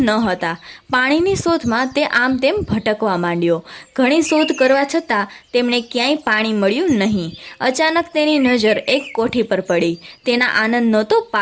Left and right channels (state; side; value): identical; both; correlation 1.00